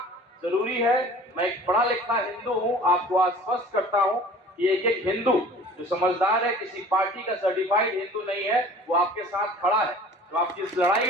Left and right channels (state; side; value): normal; both; correlation 0.46